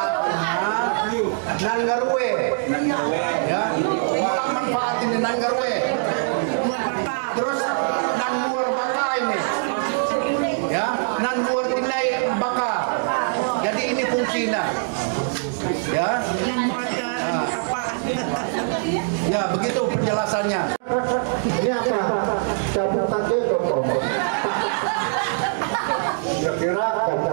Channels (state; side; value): silent; left; digital silence